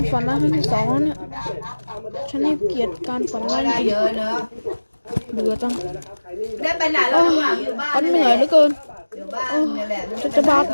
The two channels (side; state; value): both; inverted; correlation -1.00